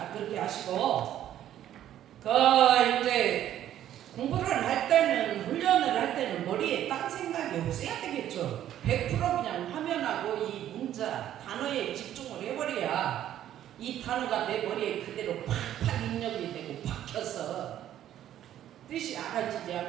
그렇게 하시고 이제 공부를 할 때는 훈련을 할 때는 머리에 딴 생각이 없어야 되겠죠. 100% 그냥 화면하고 이 문자 단어에 집중을 해버려야 이 단어가 내 머리에 그대로 팍팍 입력이 되고 박혀서 뜻이 알아지지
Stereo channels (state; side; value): quieter; left; 11.6 dB